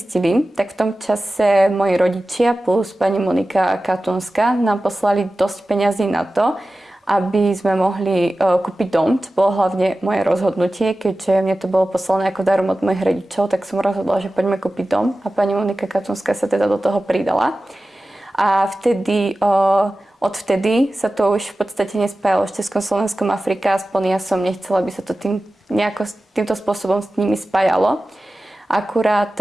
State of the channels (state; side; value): normal; both; correlation 0.95